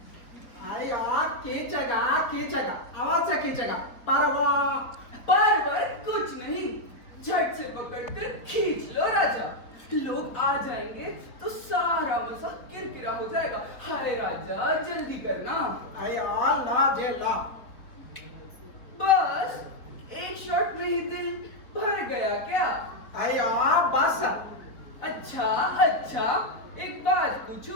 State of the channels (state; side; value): late; right; 3.9 ms